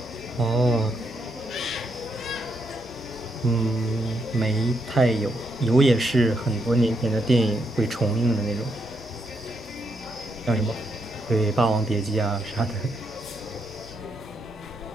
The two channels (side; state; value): both; normal; correlation 0.79